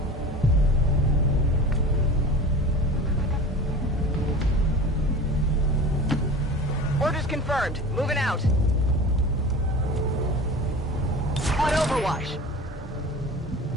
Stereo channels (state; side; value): normal; both; correlation 0.36